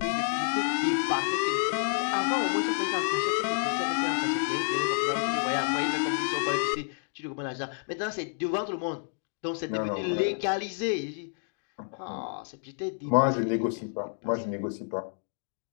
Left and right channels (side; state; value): right; silent; 58 dB below the other